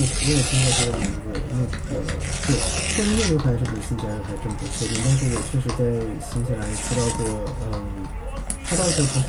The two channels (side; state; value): both; identical; correlation 1.00